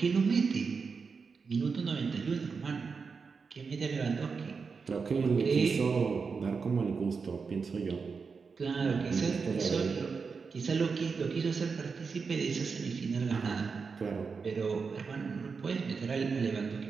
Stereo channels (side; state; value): left; quieter; 5.2 dB